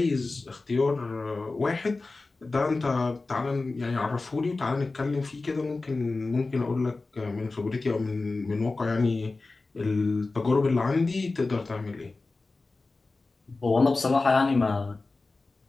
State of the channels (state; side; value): quieter; right; 3.5 dB